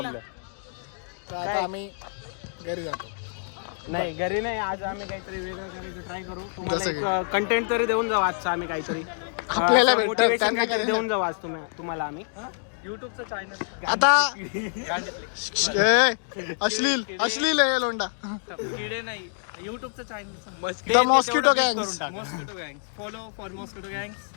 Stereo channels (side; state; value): right; silent; digital silence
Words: तर आता आम्ही घरी जातो. नाही घरी नाही, आज आम्ही काहीतरी वेगळं करायचं ट्राय करू. तुम्हाला जसं एक कंटेंट तरी देऊन जाऊ आजचा आम्ही काहीतरी. आपल्याला भेटतं, मोटिवेशन त्यांना काहीतरी काय? देऊन जाऊ आज तुम्हाला आम्ही. युट्यूबचं चॅनल आता अश्लील अश्लील आहे लोंडा. किडे नाही, युट्यूबचं channel the mosquito gangs. Mosquito गँग. फॉलो फॉर मॉस्किटो गँग